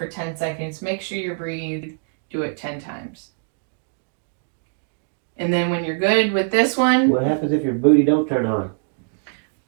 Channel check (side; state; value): left; silent; digital silence